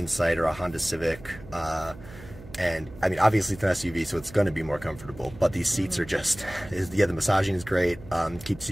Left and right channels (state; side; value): noise; right; hum, 17 dB below the sound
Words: or a Honda Civic. And I mean, obviously it's an SUV, so it's going to be more comfortable, but these seats are just, yeah, the massaging is great. Keeps